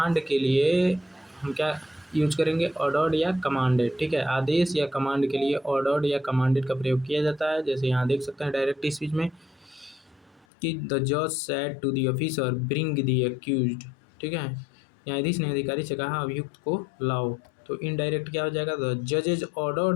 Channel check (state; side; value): drops out; right; at 10.5 s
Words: के लिए हम क्या यूज करेंगे, ऑर्डर्ड या कमांडेड। ठीक है, आदेश या कमांड के लिए ऑर्डर्ड या कमांडेड का प्रयोग किया जाता है। जैसे यहाँ देख सकते हैं डायरेक्ट स्पीच में कि द जज said to the officer bring the accused. ठीक है, न्यायाधीश ने अधिकारी से कहा अभियुक्त को लाओ। तो इनडायरेक्ट क्या हो जाएगा, द जजेज